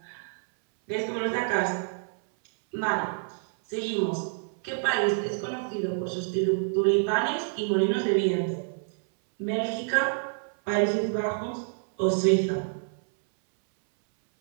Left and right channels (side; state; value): left; silent; 60 dB below the other